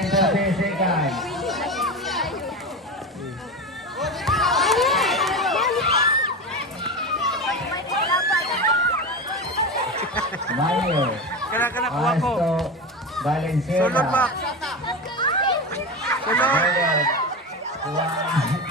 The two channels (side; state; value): both; normal; correlation 0.22